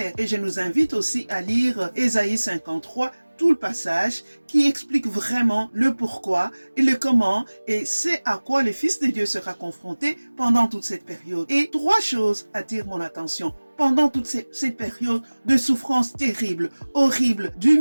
Et je nous invite aussi à lire Ésaïe 53, tout le passage qui explique vraiment le pourquoi et le comment et c'est à quoi le Fils de Dieu sera confronté pendant toute cette période. Et 3 choses attirent mon attention. Pendant toute cette période de souffrance terrible, horrible,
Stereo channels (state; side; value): inverted; both; correlation -1.00